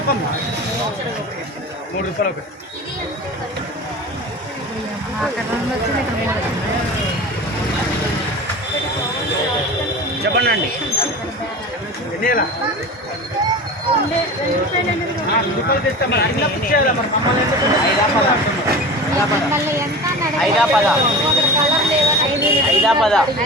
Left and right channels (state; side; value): normal; both; correlation 0.33